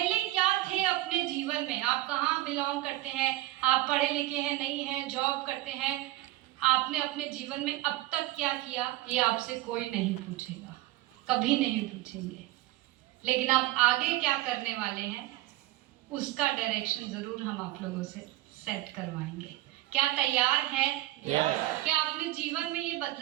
क्या थे अपने जीवन में? आप कहाँ बिलोंग करते हैं? आप पढ़े लिखे हैं, नहीं हैं, जॉब करते हैं? आपने अपने जीवन में अब तक क्या किया, ये आपसे कोई नहीं पूछेगा, कभी नहीं पूछेंगे। लेकिन आप आगे क्या करने वाले हैं, उसका डायरेक्शन जरूर हम आप लोगों से सेट करवाएंगे। क्या तैयार हैं? क्या अपने जीवन में ये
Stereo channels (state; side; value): quieter; left; 16.9 dB